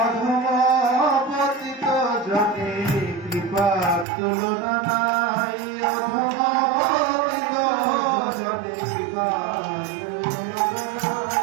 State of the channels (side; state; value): left; drops out; at 4.0 s